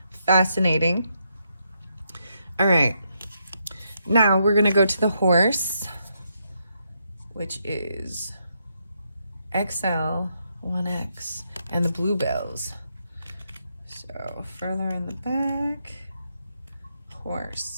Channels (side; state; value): both; inverted; correlation -0.79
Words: fascinating. All right, now we're gonna go to the horse, which is XL 1X, and the bluebells. So further in the back,